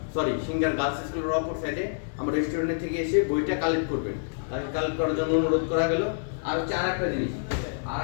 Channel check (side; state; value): right; silent; digital silence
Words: সিঙ্গার গার্লস স্কুলের অপর সাইডে আমার রেস্টুরেন্ট থেকে এসে বইটা কালেক্ট করবেন। তাকে কালেক্ট করার জন্য অনুরোধ করা গেল। আর হচ্ছে আর একটা জিনিস, আর